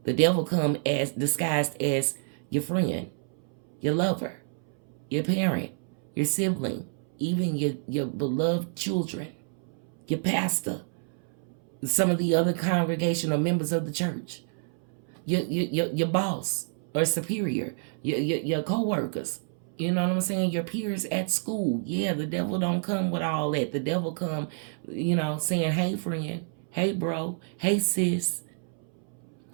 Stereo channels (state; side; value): silent; left; 59 dB below the other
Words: The devil come as disguised as your friend, your lover, your parent, your sibling, even your beloved children, your pastor, some of the other congregational members of the church, your boss or superior, your co-workers. You know what I'm saying? Your peers at school. Yeah, the devil don't come with all that. The devil come, saying, hey, friend, hey, bro, hey, sis,